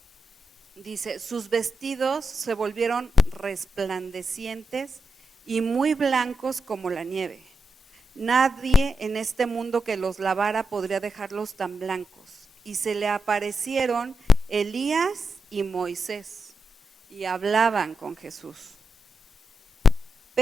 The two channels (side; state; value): both; normal; correlation 0.87